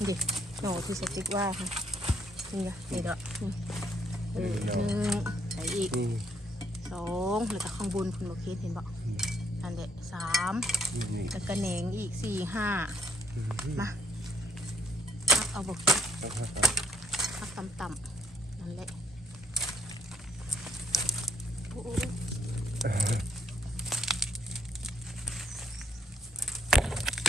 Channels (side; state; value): both; normal; correlation 0.68